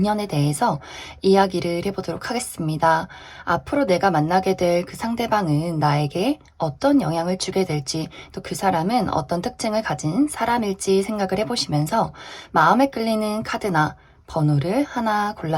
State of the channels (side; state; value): both; identical; correlation 1.00